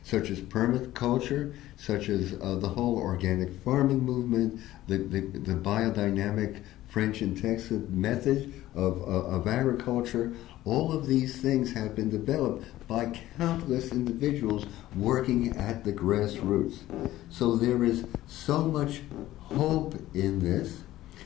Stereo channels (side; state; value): right; quieter; 15.1 dB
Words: such as permaculture, such as the whole organic farming movement, the biodynamic French and Texas method of agriculture. All of these things have been developed by countless individuals working at the grassroots. So there is so much hope in this,